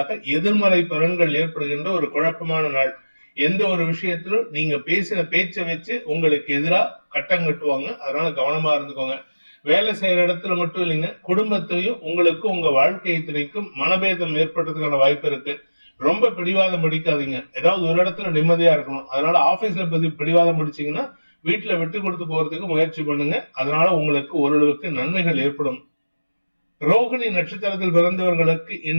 எதிர்மறை பலன்கள் ஏற்படுகின்ற ஒரு குழப்பமான நாள். எந்த ஒரு விஷயத்திலும் நீங்க பேசின பேச்சை வச்சு உங்களுக்கு எதிராக கட்டம் கட்டுவாங்க. அதனால கவனமா இருந்துக்கோங்க. வேலை செய்யற இடத்துல மட்டும் இல்லைங்க, குடும்பத்திலையும் உங்களுக்கும் உங்க வாழ்க்கை துணைக்கும் மனபேதம் ஏற்படுறதுக்கான வாய்ப்பு இருக்கு. ரொம்ப பிடிவாதம் பிடிக்காதீங்க. ஏதாவது ஒரு இடத்துல நிம்மதியா இருக்கணும். அதனால ஆபீஸ்ல பிடிவாதம் பிடிச்சீங்கன்னா வீட்டுல விட்டு கொடுத்து போறதுக்கு முயற்சி பண்ணுங்க. அதனால உங்களுக்கு ஓரளவுக்கு நன்மைகள் ஏற்படும். ரோகிணி நட்சத்திரத்தில் பிறந்தவர்களுக்கு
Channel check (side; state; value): both; inverted; correlation -1.00